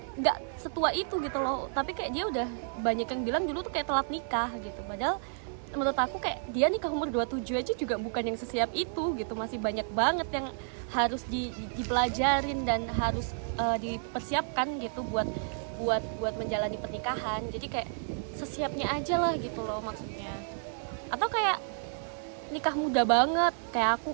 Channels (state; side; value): silent; left; digital silence